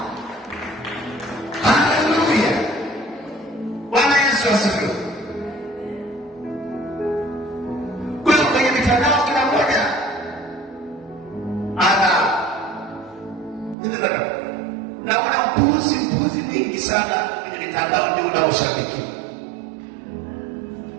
Haleluya! Bwana Yesu asifiwe. Kwa kwenye mitandao kila mmoja naona mpuzi mingi sana kwenye mitandao, ndio unaoshabiki,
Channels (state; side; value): drops out; left; at 13.8 s